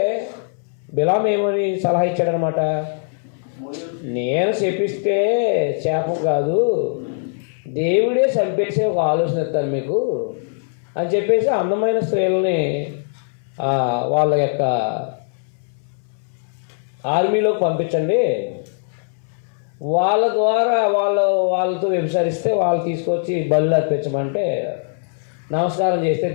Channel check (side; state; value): right; silent; 63 dB below the other